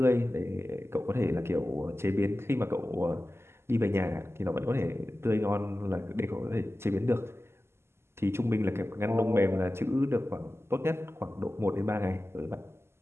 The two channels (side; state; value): left; late; 0.12 ms